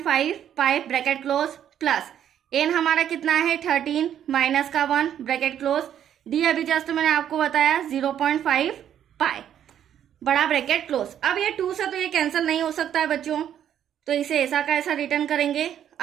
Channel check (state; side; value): quieter; left; 10.0 dB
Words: पाई ब्रैकेट क्लोज, प्लस एन हमारा कितना है 13 माइनस का 1 ब्रैकेट क्लोज, डी अभी जस्ट मैंने आपको बताया 0.5 पाई बड़ा ब्रैकेट क्लोज। अब ये 2 से तो ये कैंसिल नहीं हो सकता है बच्चों, तो इसे ऐसा का ऐसा रिटर्न करेंगे।